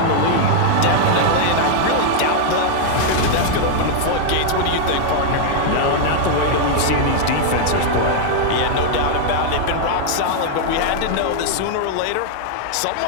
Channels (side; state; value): both; different; correlation 0.00